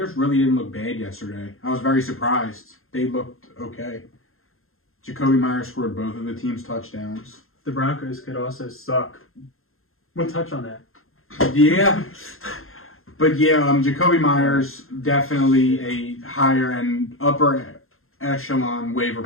really didn't look bad yesterday. I was very surprised. They looked okay. Jacoby Myers scored both of the team's touchdowns. The Broncos could also suck. We'll touch on that. Yeah. But yeah, Jacoby Myers, definitely a higher and upper echelon waiver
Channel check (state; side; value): late; right; 0.61 ms